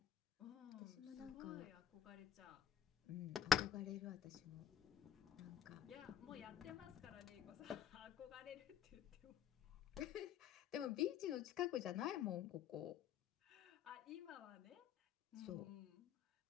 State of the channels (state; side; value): quieter; right; 9.2 dB